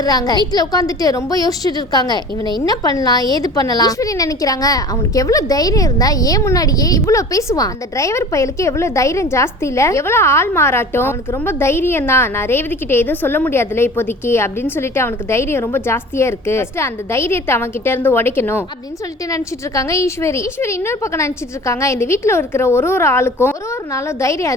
வீட்டுல உட்காந்துட்டு ரொம்ப யோசிச்சுட்டு இருக்காங்க, இவனை என்ன பண்ணலாம் ஏது பண்ணலாம். ஈஸ்வரி நினைக்கிறாங்க, அவனுக்கு எவ்வளவு தைரியம் இருந்தா ஏன் முன்னாடியே இவ்வளவு பேசுவான். அந்த டிரைவர் பயலுக்கு எவ்வளவு தைரியம் ஜாஸ்தி இல்ல, எவ்வளவு ஆள் மாறாட்டம். அவனுக்கு ரொம்ப தைரியம் தான். நான் ரேவதி கிட்ட எதுவும் சொல்ல முடியாதுல இப்போதைக்கு அப்படின்னு சொல்லிட்டு அவனுக்கு தைரியம் ரொம்ப ஜாஸ்தியா இருக்கு. அந்த தைரியத்தை அவன் கிட்ட இருந்து உடைக்கணும் அப்படின்னு சொல்லிட்டு நினைச்சிட்டு இருக்காங்க ஈஸ்வரி. இன்னொரு பக்கம் நினைச்சிட்டு இருக்காங்க, இந்த வீட்டுல இருக்கிற ஒரு ஆளுக்கும் ஒரு நாளும் தைரியம்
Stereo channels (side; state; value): both; normal; correlation 0.41